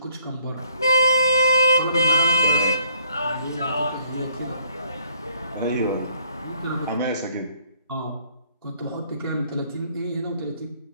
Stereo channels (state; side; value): inverted; both; correlation -0.64